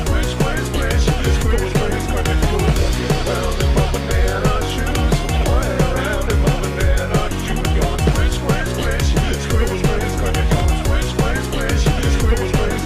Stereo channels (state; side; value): identical; both; correlation 1.00